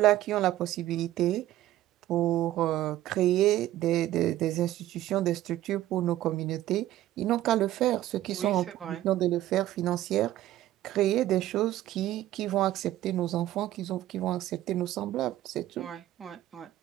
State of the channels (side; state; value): left; quieter; 14.2 dB